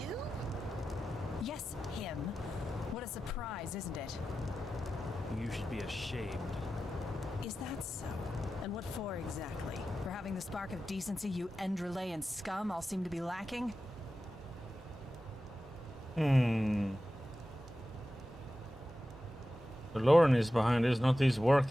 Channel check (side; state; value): both; normal; correlation 0.93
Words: Yes, him. What a surprise, isn't it? You should be ashamed. Is that so? And what for exactly? For having the spark of decency you Enderalayan scum all seem to be lacking? The Lauren is behind this, not these